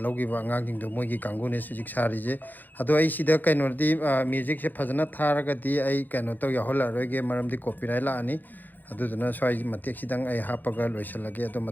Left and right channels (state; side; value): late; right; 0.086 ms